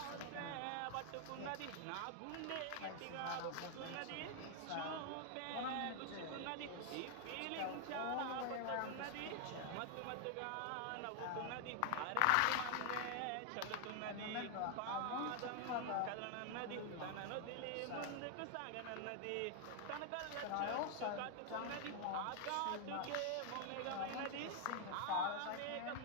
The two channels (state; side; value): different; both; correlation 0.00